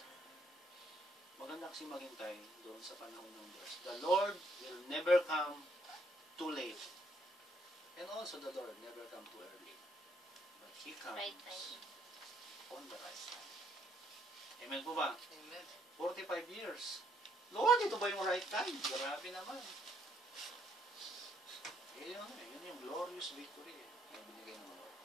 maganda kasi maghintay doon sa panahon ng Diyos. The Lord will never come too late. And also the Lord never come too early. But He comes Right time. on the right time. Amen po ba? Amen. 45 years. Lord, ito ba yung right time? Grabe naman. Yun yung glorious victory na binigay ng Lord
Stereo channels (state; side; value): normal; both; correlation 0.70